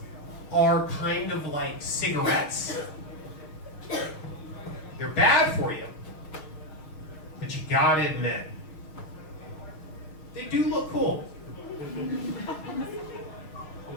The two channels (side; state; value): right; late; 6.4 ms